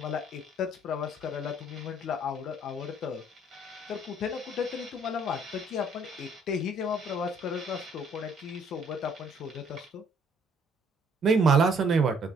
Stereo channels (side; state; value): both; normal; correlation 0.63